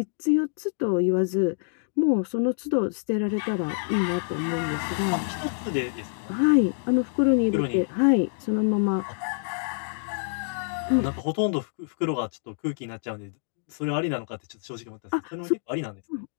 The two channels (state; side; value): silent; right; digital silence